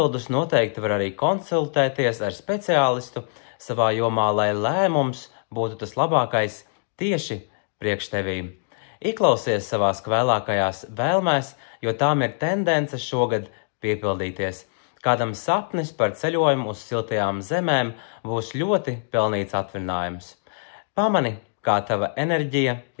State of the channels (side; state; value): right; silent; digital silence